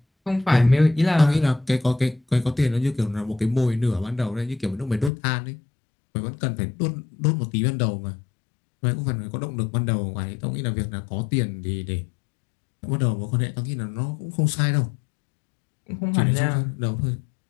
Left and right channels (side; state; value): right; drops out; at 5.1 s